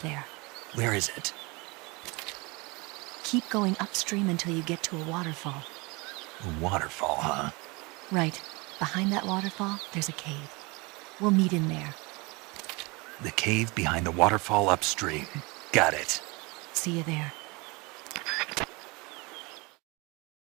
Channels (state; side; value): quieter; left; 26.6 dB